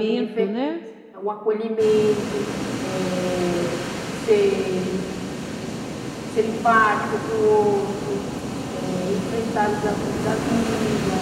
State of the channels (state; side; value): identical; both; correlation 1.00